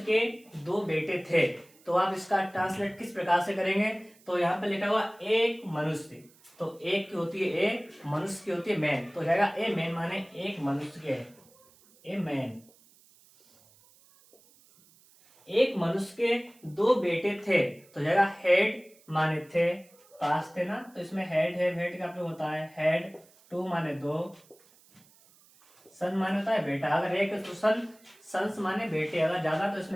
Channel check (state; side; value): noise; right; hiss, 28 dB below the sound